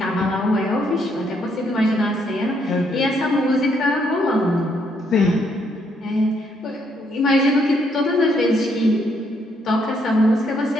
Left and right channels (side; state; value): both; normal; correlation 0.72